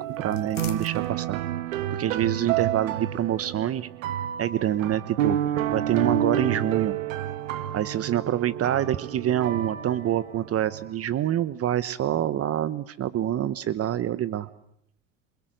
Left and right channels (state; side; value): quieter; left; 10.8 dB